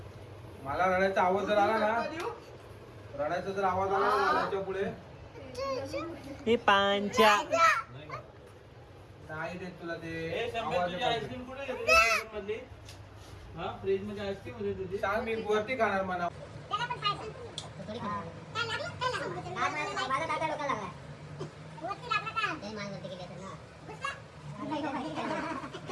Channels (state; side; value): identical; both; correlation 1.00